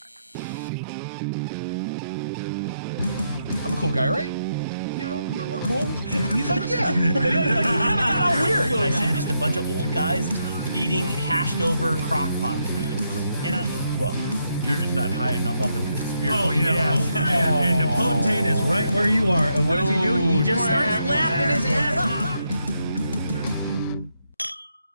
I'm a cool guy, right? You know, we're cool. He's like, yeah. He's all weird. I see just a bunch of old guys eating hashed over crock pot food. And well, you're just not high enough up in the conspiracy. Oh, yeah. And the potentate is right where you are. And what does he do? He just starts laughing his ass off.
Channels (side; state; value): both; inverted; correlation -0.80